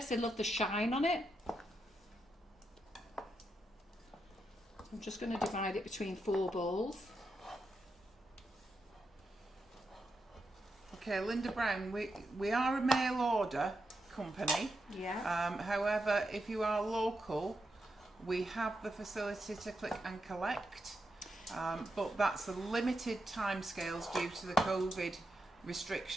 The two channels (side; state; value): both; normal; correlation 0.85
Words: they love the shine on it. I'm just going to divide it between 4 bowls. Okay, Linda Brown, we are a mail order company. Yeah. However, if you are local, we have the facility to click and collect, but that's a limited timescales due to the COVID